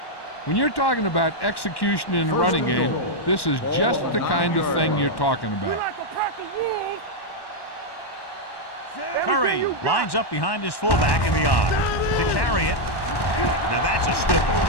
When you're talking about execution in the running game, this is just the kind of thing you're talking about. Curry lines up behind his fullback in the odd to carry it. Now that's a stiff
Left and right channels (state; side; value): late; right; 1.1 ms